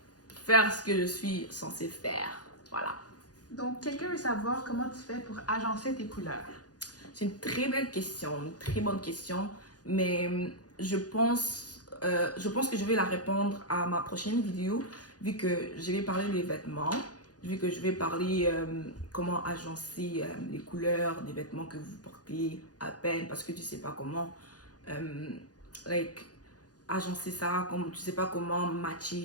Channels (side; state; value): right; late; 0.68 ms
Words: faire ce que je suis censée faire. Voilà. Donc, quelqu'un veut savoir comment tu fais pour agencer tes couleurs. C'est une très belle question, une très bonne question, mais je pense que je vais la répondre à ma prochaine vidéo, vu que je vais parler des vêtements, vu que je vais parler comment agencer les couleurs des vêtements que vous portez à peine, parce que tu sais pas comment like, agencer ça, comme tu sais pas comment